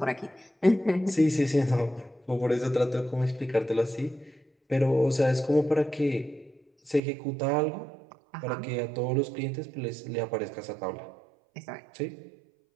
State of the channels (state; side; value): drops out; left; at 7.0 s